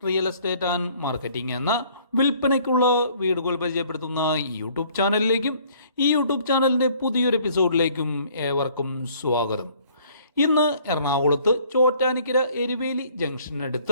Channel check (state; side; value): inverted; both; correlation -0.59